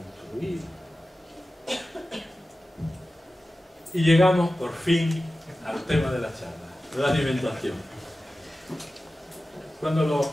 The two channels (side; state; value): both; normal; correlation 0.95